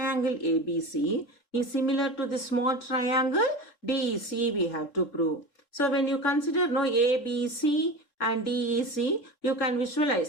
ABC is similar to the small triangle DEC we have to prove. So when you consider ABC and DEC, you can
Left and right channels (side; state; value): right; late; 3.6 ms